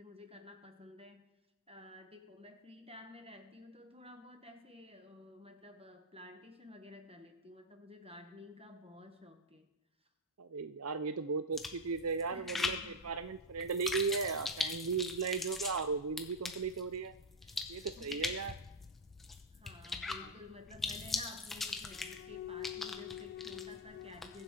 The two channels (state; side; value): normal; both; correlation 0.02